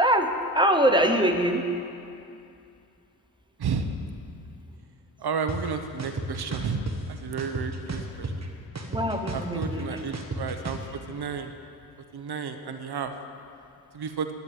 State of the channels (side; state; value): both; normal; correlation 0.31